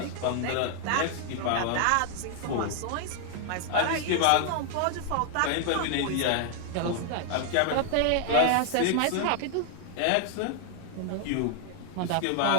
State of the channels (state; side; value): different; both; correlation 0.00